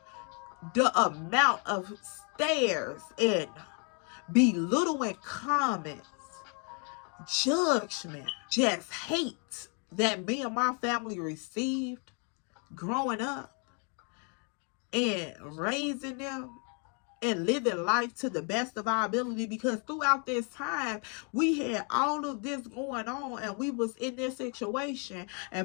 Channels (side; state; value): right; quieter; 38.4 dB